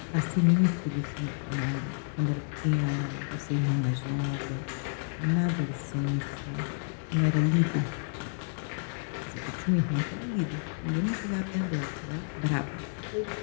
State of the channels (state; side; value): silent; right; digital silence